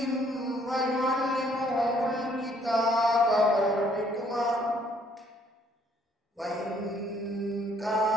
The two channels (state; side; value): normal; both; correlation 0.64